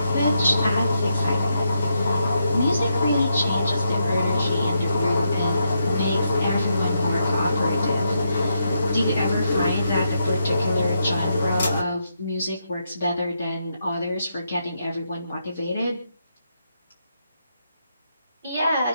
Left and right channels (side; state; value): both; inverted; correlation -0.81